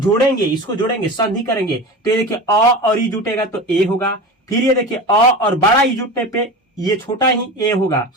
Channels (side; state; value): both; normal; correlation 0.30